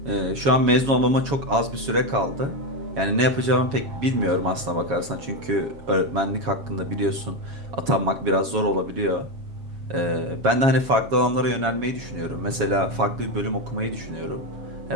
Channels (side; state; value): left; late; 7.2 ms